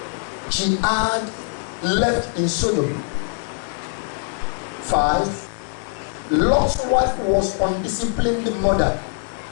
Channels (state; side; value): silent; right; digital silence